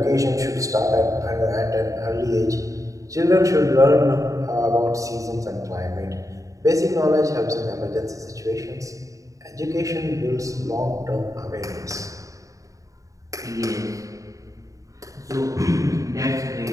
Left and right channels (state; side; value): late; left; 0.16 ms